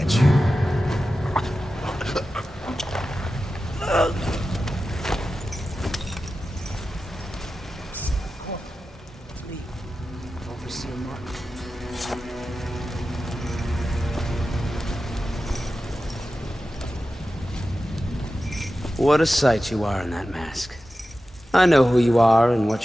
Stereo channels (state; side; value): normal; both; correlation 0.93